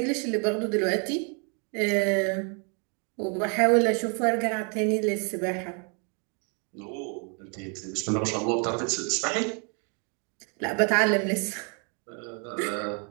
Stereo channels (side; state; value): left; quieter; 37.2 dB